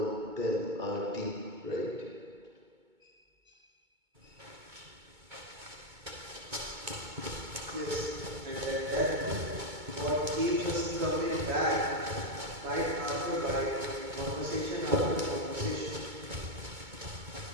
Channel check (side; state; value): left; late; 2.2 ms